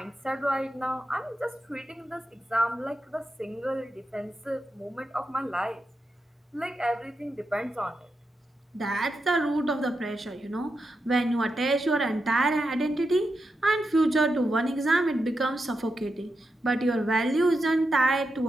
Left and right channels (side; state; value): both; normal; correlation 0.87